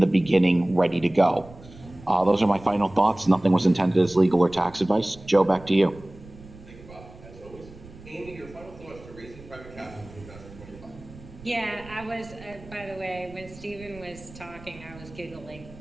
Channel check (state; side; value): noise; right; rumble, 19 dB below the sound